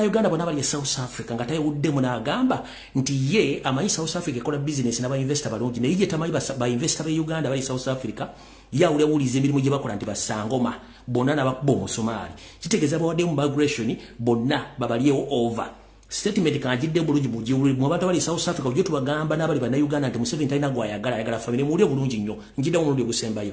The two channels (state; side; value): identical; both; correlation 1.00